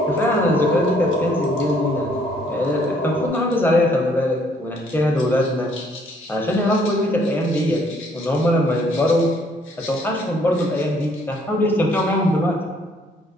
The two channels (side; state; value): both; normal; correlation 0.64